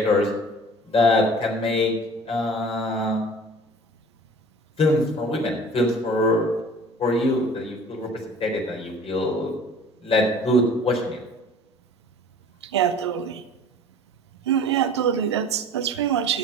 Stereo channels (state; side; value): normal; both; correlation 0.45